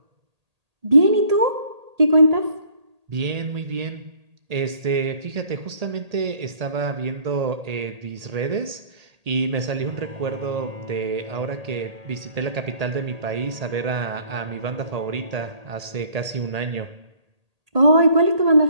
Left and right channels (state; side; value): late; left; 1.8 ms